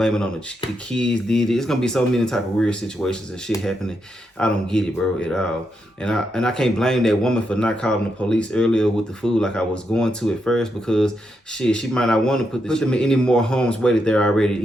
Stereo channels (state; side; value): normal; both; correlation 0.82